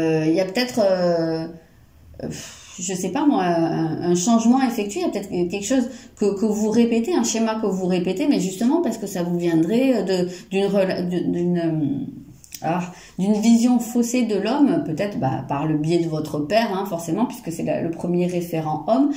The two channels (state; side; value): identical; both; correlation 1.00